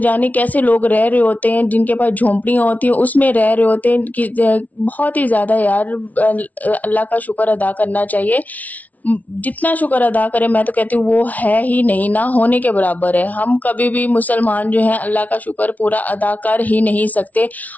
जाने कैसे लोग रह रहे होते हैं। जिनके पास झोंपड़ियां होती हैं उसमें रह रहे होते हैं कि बहुत ही ज्यादा यार अल्लाह का शुक्र अदा करना चाहिए। जितना शुक्र अदा करें मैं तो कहती हूँ वो है ही नहीं, ना होने के बराबर है। हम कभी भी मुसलमान जो हैं अल्लाह का शुक्र पूरा अदा कर ही नहीं सकते,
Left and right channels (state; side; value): late; right; 0.073 ms